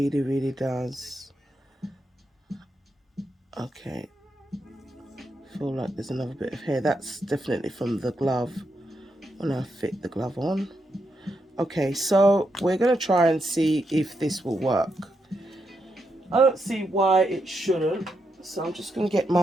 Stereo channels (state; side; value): normal; both; correlation 0.83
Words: really does. Okay. Feel like there's another bit of hair. That's definitely from the glove when I fit the glove on. Okay, so we're going to try and see if this will work. I don't see why it shouldn't. So I'm just going to get